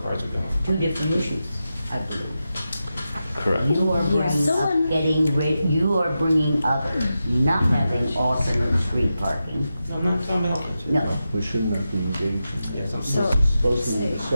cars are going? Two different issues, I believe. Correct. You are you are bringing up not having alternate street parking. I'm not talking about alternative. No. We should not be engaging. Yes, I'm This is supposed to be a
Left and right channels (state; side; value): inverted; both; correlation -0.90